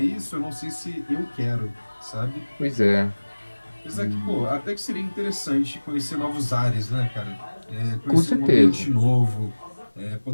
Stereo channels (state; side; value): inverted; both; correlation -1.00